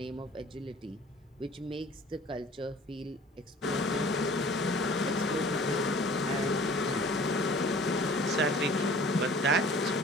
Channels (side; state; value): both; normal; correlation 0.48